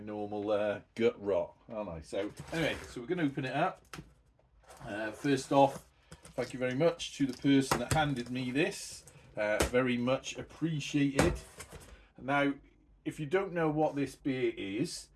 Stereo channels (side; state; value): both; identical; correlation 1.00